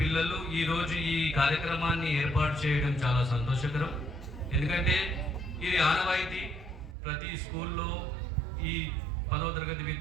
పిల్లలు ఈరోజు ఈ కార్యక్రమాన్ని ఏర్పాటు చేయడం చాలా సంతోషకరం. ఎందుకంటే ఇది ఆనవాయితీ. ప్రతి స్కూల్లో ఈ 10వ తరగతి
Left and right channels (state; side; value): drops out; left; at 7.0 s